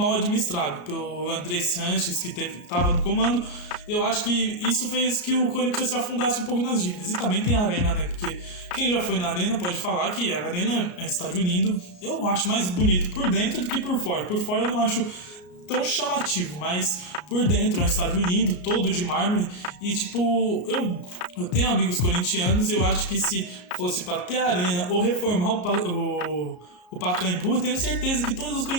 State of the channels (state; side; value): late; right; 33 ms